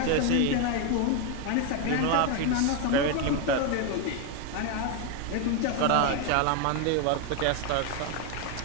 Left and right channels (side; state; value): both; different; correlation 0.01